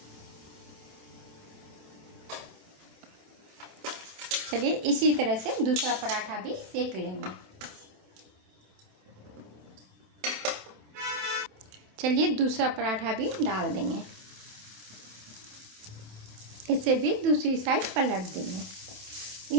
चलिए इसी तरह से दूसरा पराठा भी सेक लेंगे। चलिए दूसरा पराठा भी डाल देंगे। इसे भी दूसरी साइड पलट देंगे।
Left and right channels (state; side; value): late; left; 27 ms